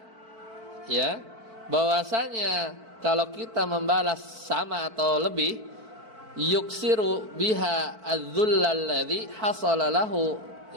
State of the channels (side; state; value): left; late; 4.5 ms